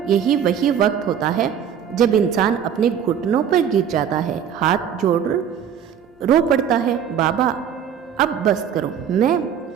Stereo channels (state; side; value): quieter; left; 8.5 dB